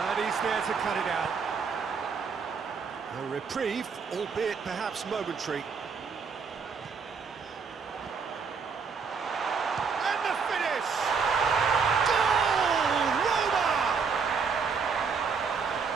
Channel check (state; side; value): quieter; left; 5.5 dB